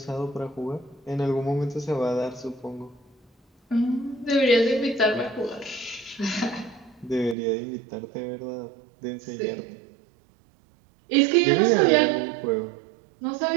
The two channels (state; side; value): drops out; left; at 7.4 s